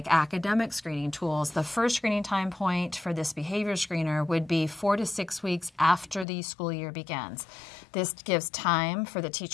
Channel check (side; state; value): right; drops out; at 6.2 s